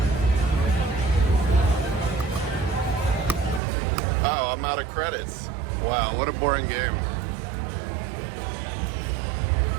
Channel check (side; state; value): left; drops out; at 3.6 s